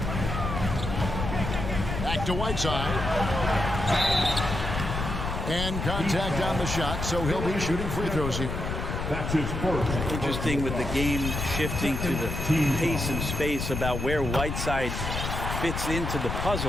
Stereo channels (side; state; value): left; noise; rumble, 4 dB below the sound